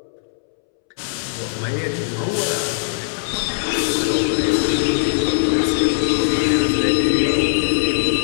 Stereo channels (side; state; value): right; silent; 66 dB below the other